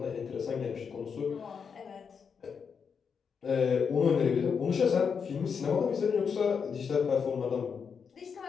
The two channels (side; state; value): right; quieter; 6.3 dB